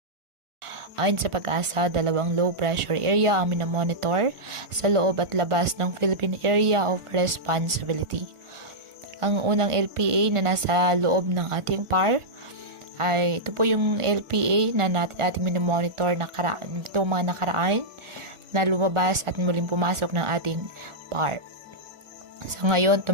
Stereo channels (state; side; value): late; left; 1.4 ms